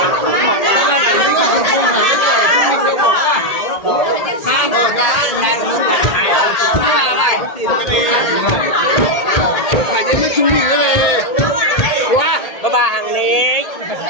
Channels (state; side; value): late; right; 1.8 ms